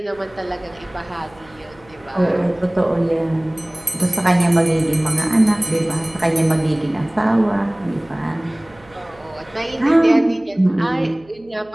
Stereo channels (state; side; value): noise; right; hum, 27 dB below the sound